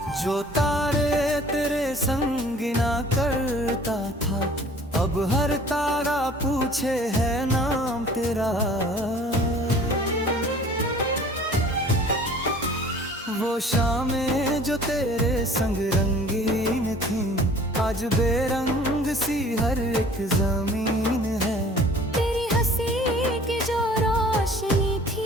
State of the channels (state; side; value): normal; both; correlation 0.49